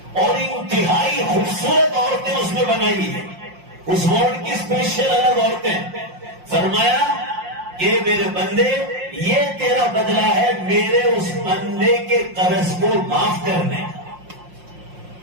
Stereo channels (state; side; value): late; left; 5.6 ms